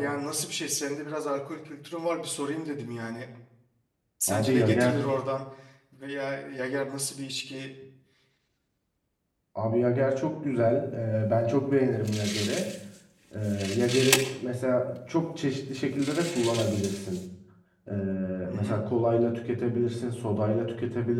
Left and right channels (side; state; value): both; identical; correlation 1.00